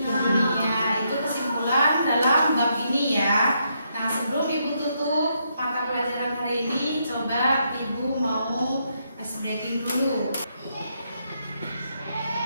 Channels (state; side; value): inverted; both; correlation -0.77